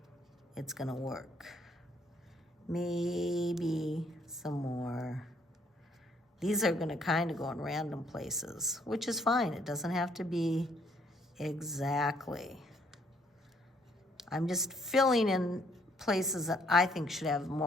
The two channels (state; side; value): normal; both; correlation 0.67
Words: it's gonna work. Maybe some more. These are gonna kind of go in random places, which is fine. It doesn't have to be exactly. I'm just filling in places that I think should have